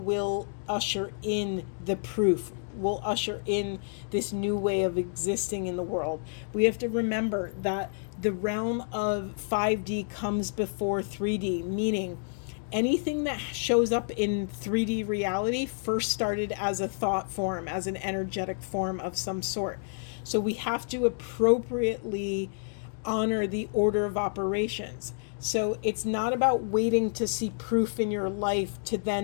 will usher in the proof, will usher in this new way of existing in the world. We have to remember that the realm of 5D comes before 3D, meaning anything that shows up in 3D reality first started as a thought form, as an energetic form of some sort. So we have to appropriately honor the order of operations. So it's not about waiting to see proof in your life to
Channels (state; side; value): silent; right; digital silence